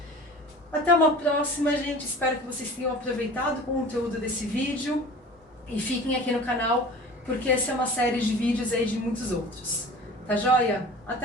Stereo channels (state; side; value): normal; both; correlation 0.41